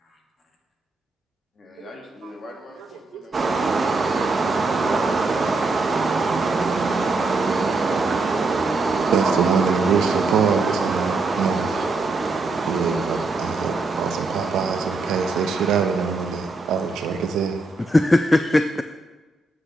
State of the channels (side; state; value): left; quieter; 3.2 dB